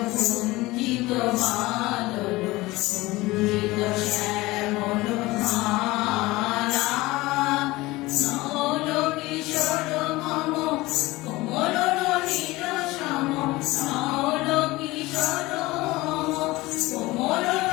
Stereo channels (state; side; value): quieter; right; 20.2 dB